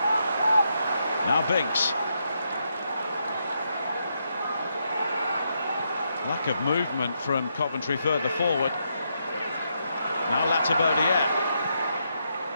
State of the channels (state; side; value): inverted; both; correlation -0.79